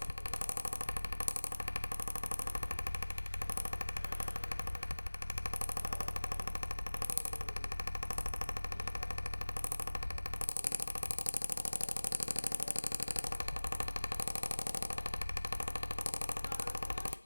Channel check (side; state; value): both; inverted; correlation -1.00